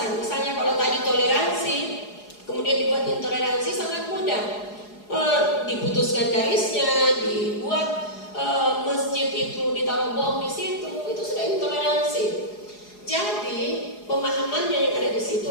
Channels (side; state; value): right; late; 4.8 ms